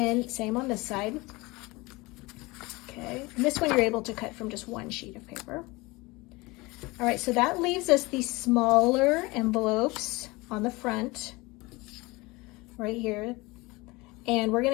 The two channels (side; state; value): right; quieter; 23.2 dB